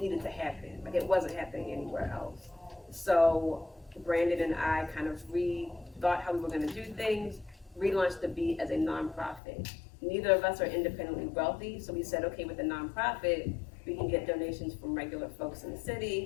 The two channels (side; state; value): right; drops out; at 9.4 s